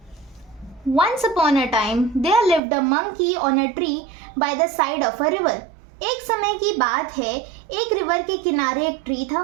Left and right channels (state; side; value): drops out; left; at 2.6 s